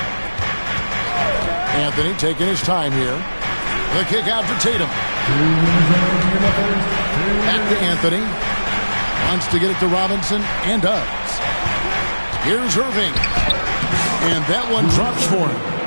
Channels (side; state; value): both; inverted; correlation -1.00